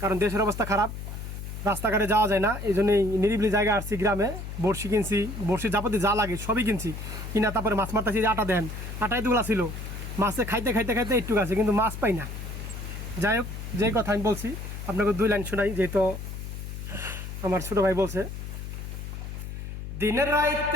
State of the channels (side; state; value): left; noise; hum, 8 dB below the sound